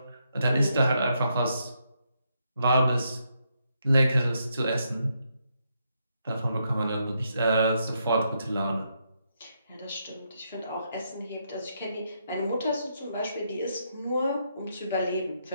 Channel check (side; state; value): both; inverted; correlation -0.79